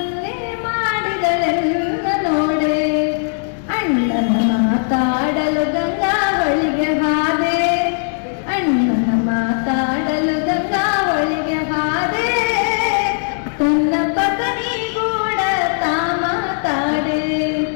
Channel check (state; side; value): silent; right; digital silence